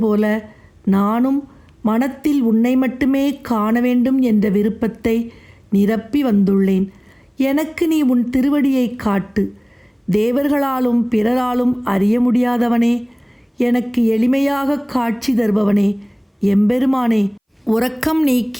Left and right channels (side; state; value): both; identical; correlation 1.00